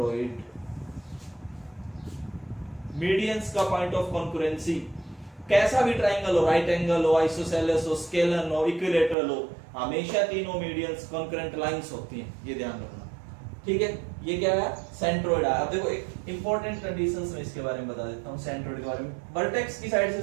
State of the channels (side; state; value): left; drops out; at 9.2 s